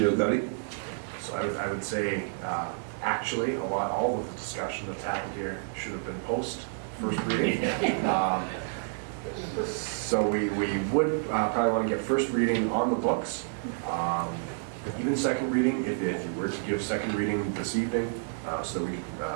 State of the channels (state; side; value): silent; left; digital silence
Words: Gotti? So I would say, actually, all of the discussion that's happened here should have been post first reading. So we would probably want to get first reading on the books. Even second reading, if you were to give second reading this evening, so that we